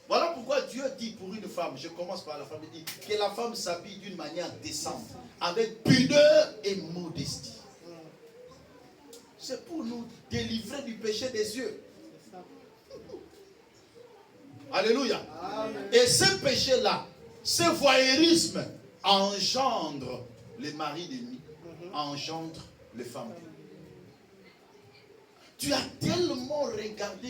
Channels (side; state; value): both; identical; correlation 1.00